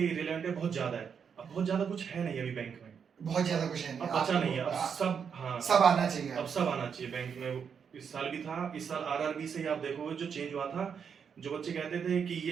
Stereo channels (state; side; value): quieter; left; 6.9 dB